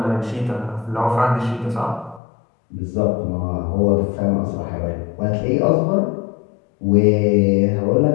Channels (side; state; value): right; drops out; at 2.2 s